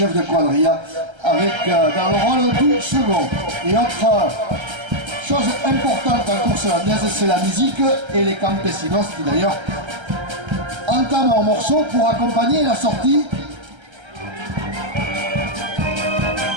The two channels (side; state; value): left; late; 1.3 ms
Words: de quadrilla avec dans le rôle du second. Et autre chose importante en course landaise, c'est la musique et les campesinos qui d'ailleurs entament un morceau pour accompagner la sortie.